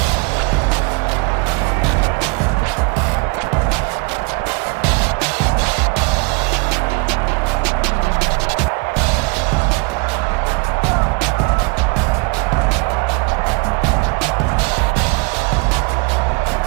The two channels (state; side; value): quieter; left; 29.4 dB